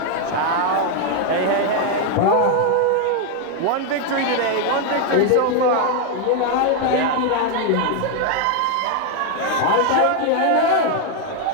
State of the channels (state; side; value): different; both; correlation 0.01